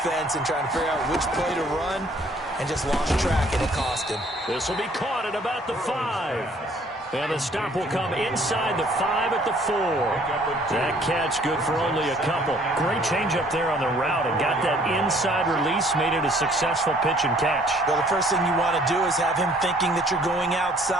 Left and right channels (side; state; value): both; normal; correlation 0.59